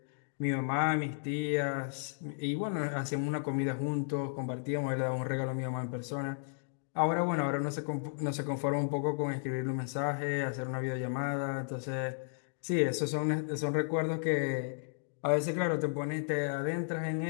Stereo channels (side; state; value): right; silent; digital silence